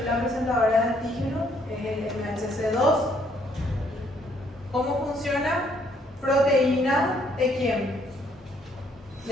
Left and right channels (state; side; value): normal; both; correlation 0.67